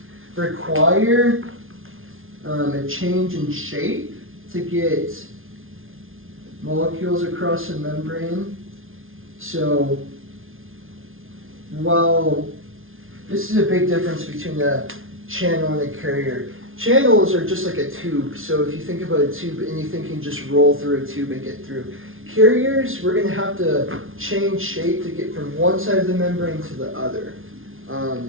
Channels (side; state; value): left; late; 0.60 ms